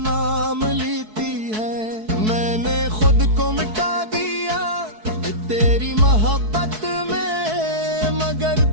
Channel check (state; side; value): late; left; 4.6 ms